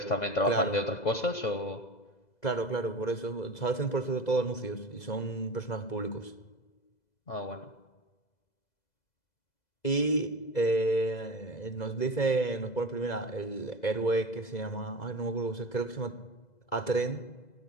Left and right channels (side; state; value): right; late; 2.0 ms